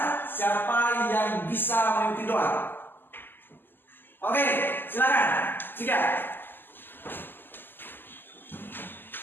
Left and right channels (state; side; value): late; right; 0.094 ms